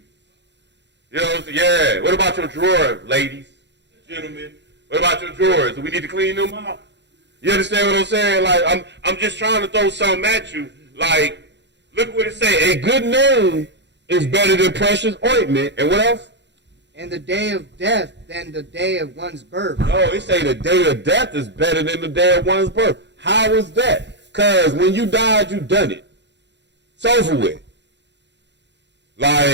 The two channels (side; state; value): left; late; 0.51 ms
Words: You know what I'm saying? Yeah. What about your drawers, ladies, gentlemen? What about your drawers? Do we need to clean them out? You understand what I'm saying? Like, I'm just trying to throw something at you. Like, look what it say. A good name is better than precious ointment. And what else? And the day of death than the day of one's birth. No, it say the day of death is better than the day of one's birth. How is that? Because when you died, you done it. It's over with.